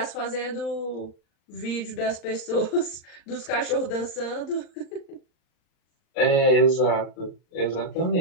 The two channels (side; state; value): right; late; 39 ms